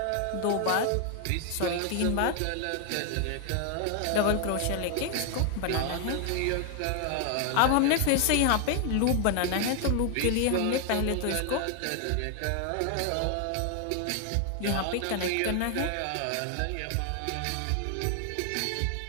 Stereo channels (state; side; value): different; both; correlation 0.00